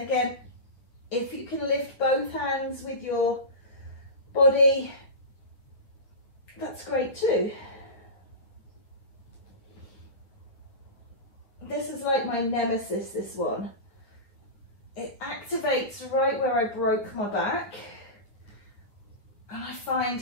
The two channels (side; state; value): right; late; 9.3 ms